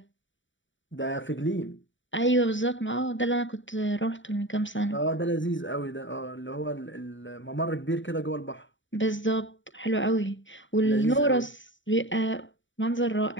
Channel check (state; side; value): late; right; 0.55 ms